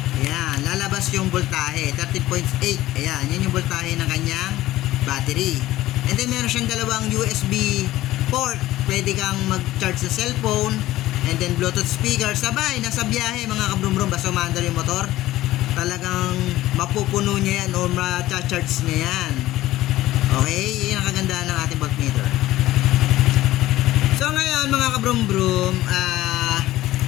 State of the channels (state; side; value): quieter; right; 15.9 dB